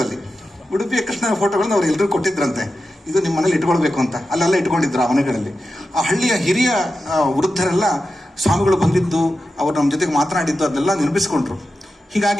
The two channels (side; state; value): both; normal; correlation 0.91